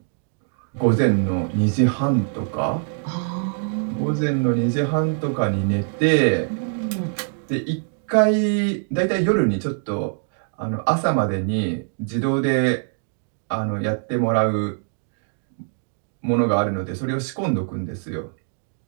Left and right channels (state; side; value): silent; left; 63 dB below the other